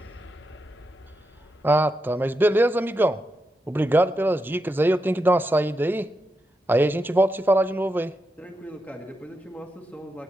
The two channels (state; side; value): normal; both; correlation 0.86